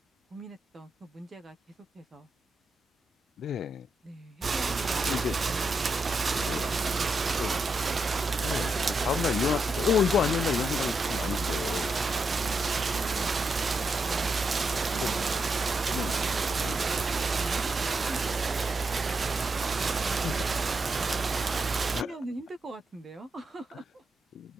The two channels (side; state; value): both; normal; correlation 0.83